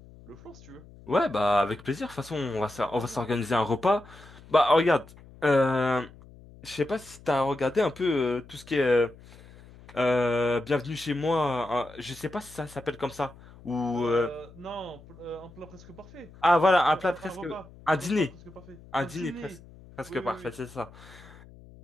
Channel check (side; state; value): left; noise; hum, 21 dB below the sound